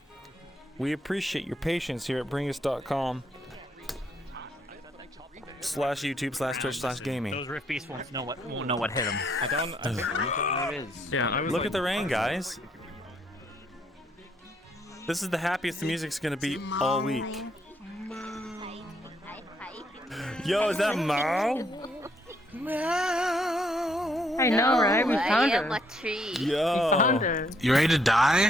We appreciate your patience here at bringus.com /YouTube/Twitch/gaming. Those Rift Beasts won't know what hit them. I don't know what it is. Yeah, I was Look at the rain, guys. This is the happiest the music's gonna be all week. Yo, is that Mao? Meow. I know, right? We found I am her. a tree. We found her. You ready to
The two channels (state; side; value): normal; both; correlation 0.71